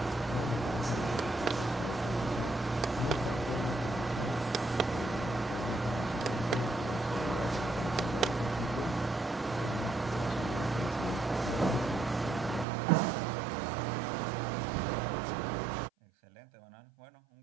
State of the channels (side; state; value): left; drops out; at 12.7 s